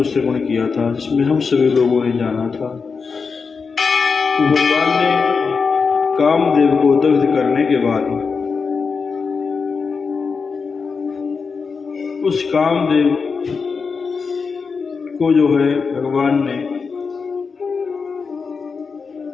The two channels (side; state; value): right; quieter; 5.1 dB